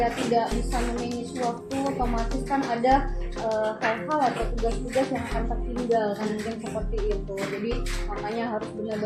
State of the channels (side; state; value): both; identical; correlation 1.00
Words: tidak bisa memanage waktu, otomatis kan ada hal-hal atau tugas-tugas yang akan tertinggal kan, mungkin seperti itu. Jadi makanya harus